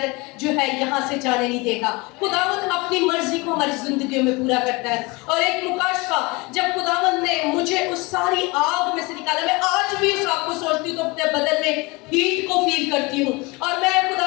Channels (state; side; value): quieter; right; 25.4 dB